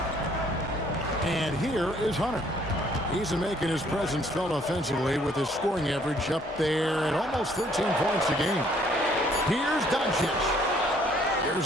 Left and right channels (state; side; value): normal; both; correlation 0.63